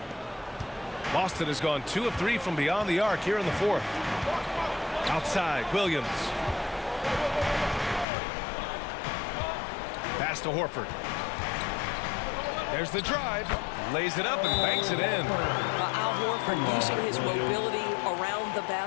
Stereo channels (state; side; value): drops out; right; at 8.1 s